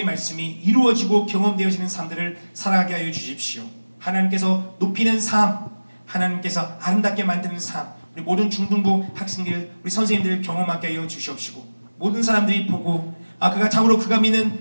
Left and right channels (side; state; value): both; inverted; correlation -1.00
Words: 말씀이 이루어지고 경험되어지는 삶들을 살아가게 하여 주십시오. 하나님께서 높이는 삶, 하나님께서 아름답게 만드는 삶, 우리 모든 중등부 학생들, 우리 선생님들 경험하게 하여 주시옵시고, 모든 사람들이 보고 그가 참으로 그가